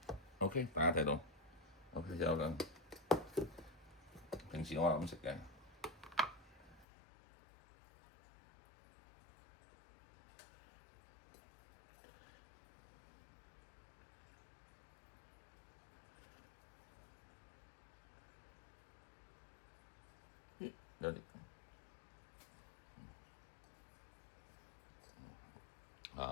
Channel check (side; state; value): right; drops out; at 6.9 s